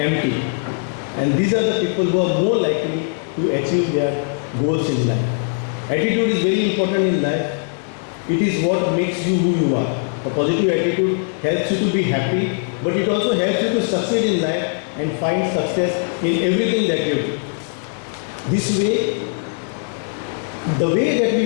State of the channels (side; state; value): right; silent; 66 dB below the other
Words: And these are the people who are more likely to achieve their goals in life. Attitude is very important in life. It is what makes you who you are. A positive attitude helps you to be happy, but it also helps you to succeed in life and find success in everything that you do. This way, the way that